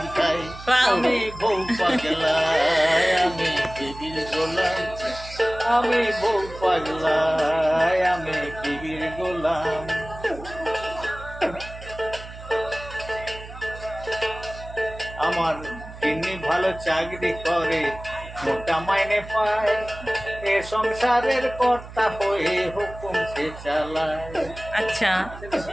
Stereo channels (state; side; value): noise; right; hum, 14 dB below the sound